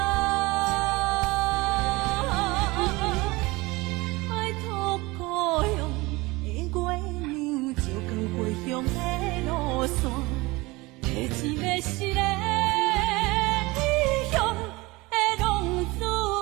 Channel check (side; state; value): left; quieter; 22.5 dB